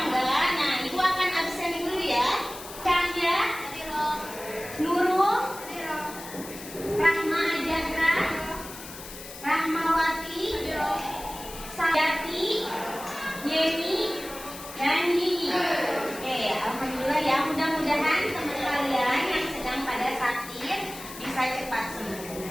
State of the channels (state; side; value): noise; left; hiss, 13 dB below the sound